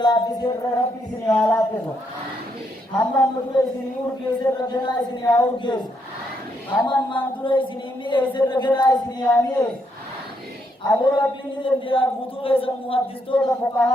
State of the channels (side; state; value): both; normal; correlation 0.76